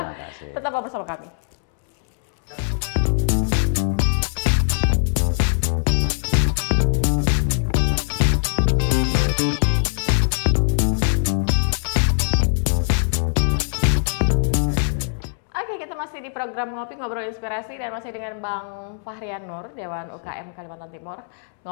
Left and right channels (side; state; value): right; silent; 64 dB below the other